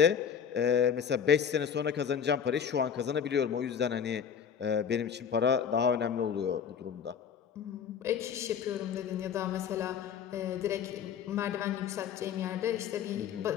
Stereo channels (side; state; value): right; quieter; 7.7 dB